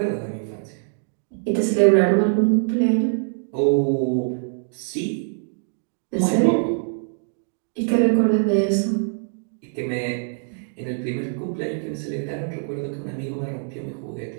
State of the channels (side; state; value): left; silent; digital silence